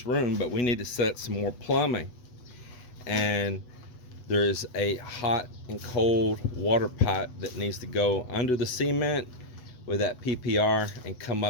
room, but we need to set some more plumbing. And there's a hot and cold water pipe that needs to go under the cement with that PPR and come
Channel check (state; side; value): late; right; 8.1 ms